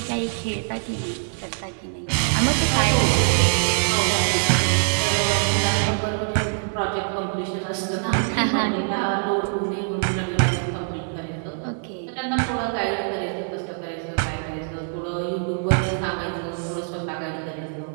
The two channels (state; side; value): silent; left; 55 dB below the other